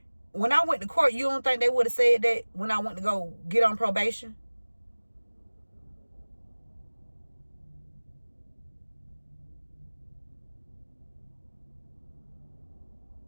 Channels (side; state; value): both; inverted; correlation -1.00